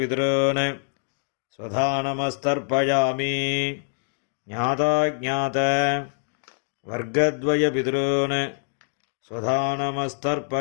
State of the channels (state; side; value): silent; right; digital silence